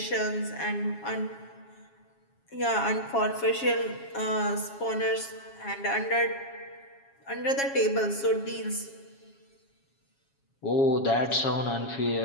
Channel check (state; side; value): late; right; 7.3 ms